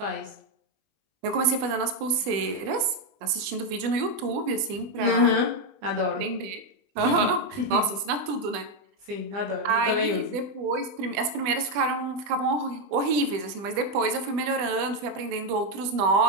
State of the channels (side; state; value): left; late; 20 ms